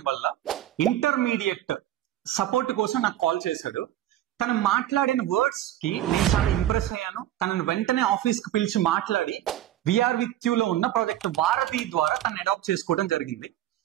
వల్ల ఇంటర్మీడియట్ సపోర్ట్ కోసం నాకు కాల్ చేశాడు. తను మాట్లాడిన వర్డ్స్ కి నేను చాలా ఇంప్రెస్ అయ్యాను. తనను వెంటనే ఆఫీస్ కి పిలిచి మాట్లాడి విఆర్ విత్ యూ లో ఉన్న ప్రాజెక్ట్ వారధి ద్వారా తను అడాప్ట్ చేసుకోవడం జరిగింది.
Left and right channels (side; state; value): left; quieter; 12.9 dB